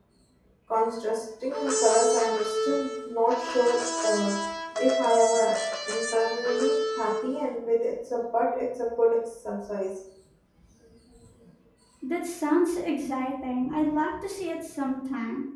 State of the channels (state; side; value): identical; both; correlation 1.00